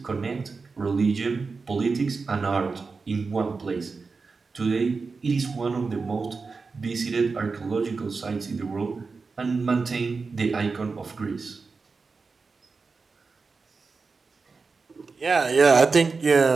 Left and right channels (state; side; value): quieter; left; 4.5 dB